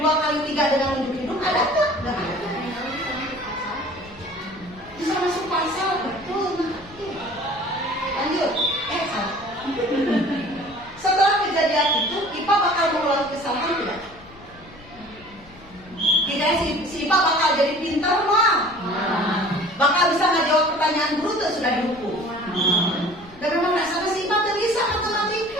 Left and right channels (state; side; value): noise; left; rumble, 23 dB below the sound